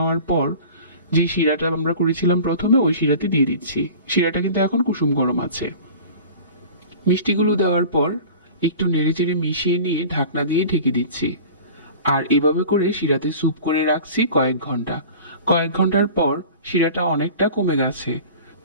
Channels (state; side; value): inverted; both; correlation -0.40